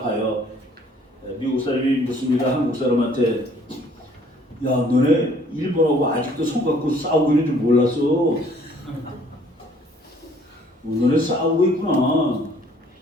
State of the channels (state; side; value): normal; both; correlation 0.59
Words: 미국 사람이 묻습니다. 한국 사람한테 야 너네 일본하고 아직도 손 갖고 싸우고 있는 줄 몰랐어. 너네 싸우고 있구나.